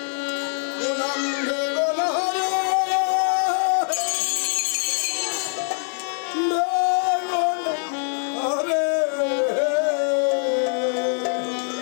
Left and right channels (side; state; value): right; silent; 63 dB below the other